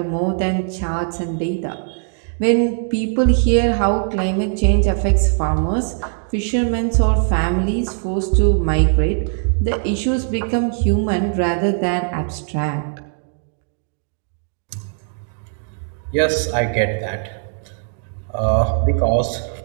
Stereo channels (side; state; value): left; silent; 65 dB below the other